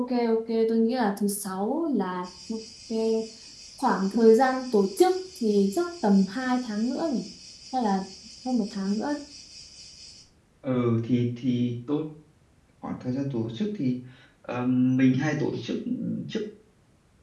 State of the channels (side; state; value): both; identical; correlation 1.00